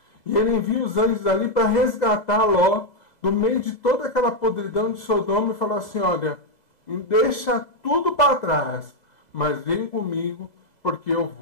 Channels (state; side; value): late; right; 2.0 ms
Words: E ele envia os anjos ali para resgatar Ló do meio de toda aquela podridão de Sodoma e falar assim: olha, deixa tudo para trás, mas vem comigo, porque eu